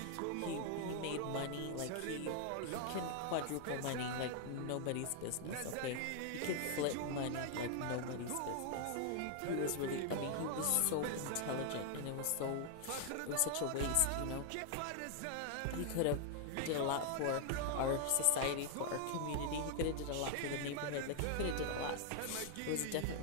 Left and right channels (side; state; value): both; different; correlation 0.00